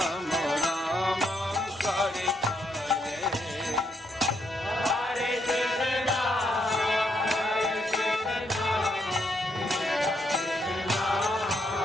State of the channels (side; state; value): both; normal; correlation 0.76